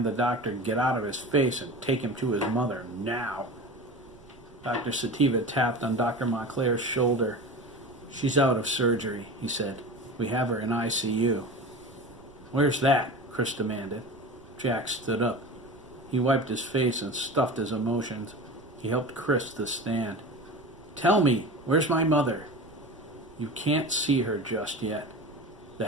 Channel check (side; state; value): right; noise; rumble, 24 dB below the sound